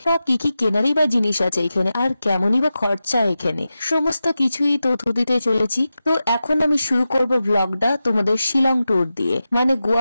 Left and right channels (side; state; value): both; inverted; correlation -0.92